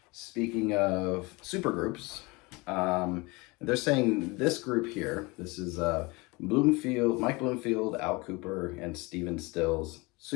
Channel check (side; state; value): right; quieter; 25.4 dB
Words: speaking of supergroups, they're saying this group here, this is Mike Bloomfield, Al Kooper, and Stephen Stills'